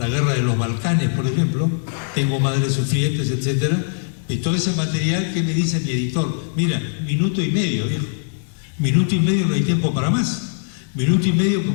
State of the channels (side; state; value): right; silent; digital silence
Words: guerra de los Balcanes, por ejemplo, tengo madres sufrientes, etcétera. Y todo ese material, ¿qué me dice mi editor? Mira, minuto y medio, viejo. Minuto y medio, no hay tiempo para más. Minuto y medio